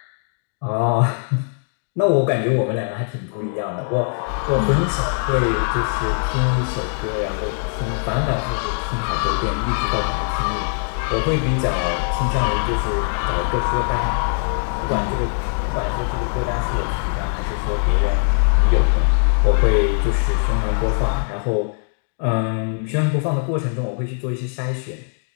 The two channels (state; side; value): silent; right; digital silence